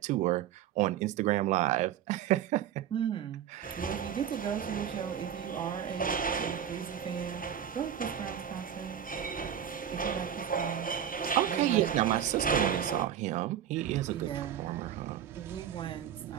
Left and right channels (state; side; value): quieter; left; 9.6 dB